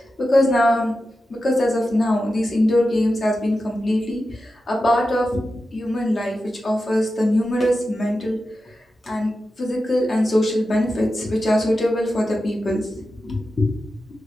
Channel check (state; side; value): normal; both; correlation 0.91